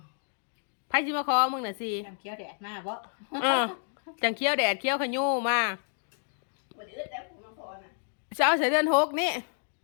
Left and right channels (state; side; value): silent; right; digital silence